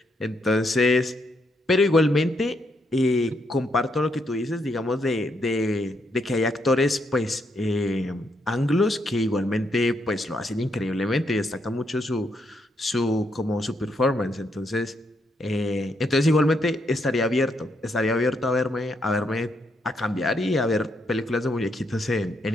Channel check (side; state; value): both; normal; correlation 0.77